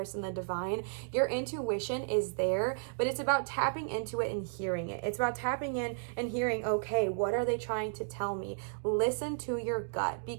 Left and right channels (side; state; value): left; silent; digital silence